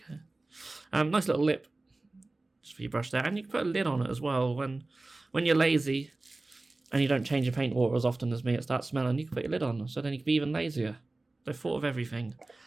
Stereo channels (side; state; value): left; quieter; 3.1 dB